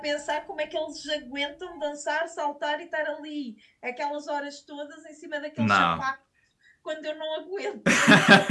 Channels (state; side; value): identical; both; correlation 1.00